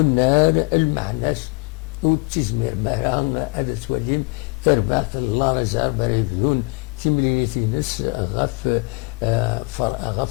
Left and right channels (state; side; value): quieter; right; 30.1 dB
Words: المعناس وتزمير مهران هذا توليم تربعت الله رزار بريفيون تملينيتي نس غاف